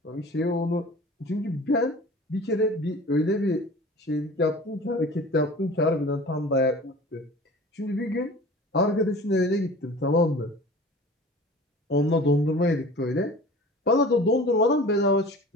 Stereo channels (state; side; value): normal; both; correlation 0.41